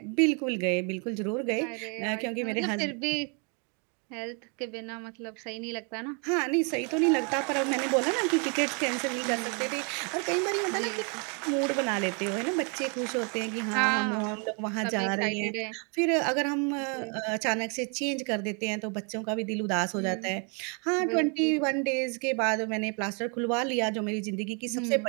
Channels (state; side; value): quieter; left; 36.5 dB